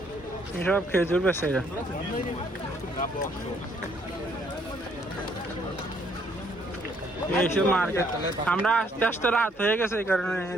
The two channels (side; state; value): both; normal; correlation 0.67